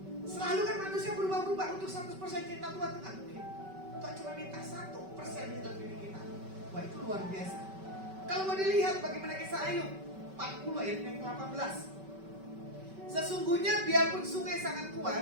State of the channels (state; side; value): late; left; 5.2 ms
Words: Selalu kan manusia berubah-ubah. Untuk 100% cinta Tuhan itu nggak mungkin. Tuhan cuma minta 1% di dalam diri kita. Wah itu luar biasa. Kalau mau dilihat bagaimana kisah Ayub 40 ayat yang ke-18. Sesungguhnya biarpun sungai sangat kuat